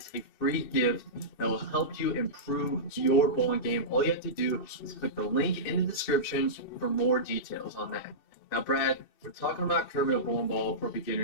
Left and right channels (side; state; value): right; late; 2.7 ms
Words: a free gift that will help you improve your bowling game. All you have to do is click the link in the description for more details on that. Now, Brad, we're talking about curving a bowling ball for